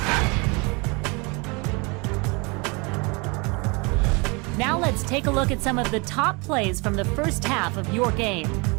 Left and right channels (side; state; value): left; quieter; 29.2 dB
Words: Now let's take a look at some of the top plays from the first half of your game.